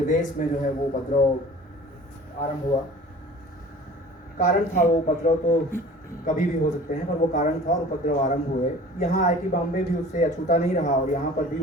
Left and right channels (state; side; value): normal; both; correlation 0.44